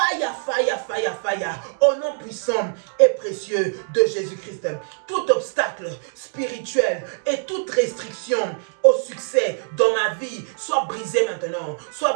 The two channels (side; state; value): left; silent; digital silence